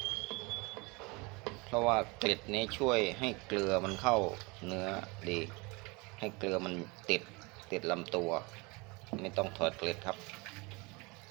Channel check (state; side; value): quieter; left; 26.9 dB